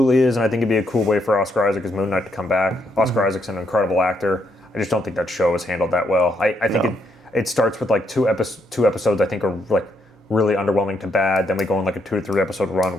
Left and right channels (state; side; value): normal; both; correlation 0.76